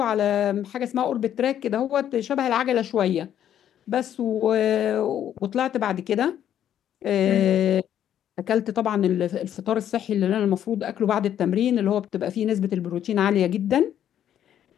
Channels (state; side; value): quieter; right; 10.4 dB